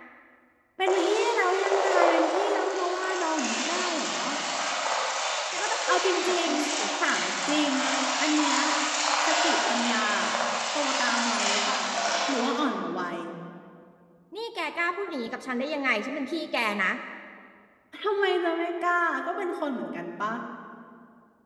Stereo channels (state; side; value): identical; both; correlation 1.00